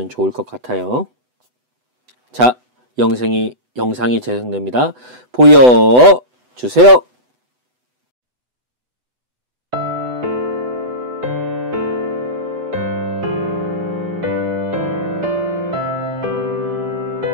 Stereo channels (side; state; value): left; late; 8.0 ms